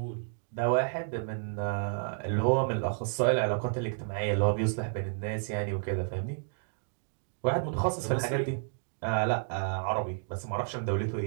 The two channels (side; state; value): left; silent; digital silence